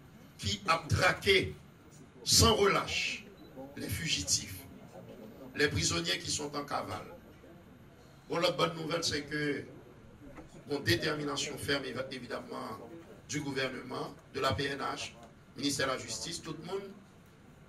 qui a traqué sans relâche les fugitifs, les prisonniers qui sont en cavale. Bon, la bonne nouvelle, c'est que, bon, détermination ferme, évidemment, du gouvernement, de la PNH, ministère de la Justice, tout le monde,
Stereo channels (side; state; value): both; identical; correlation 1.00